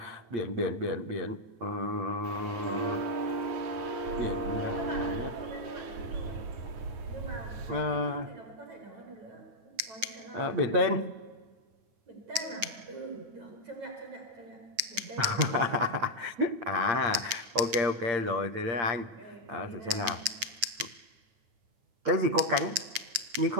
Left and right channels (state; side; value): late; left; 8.9 ms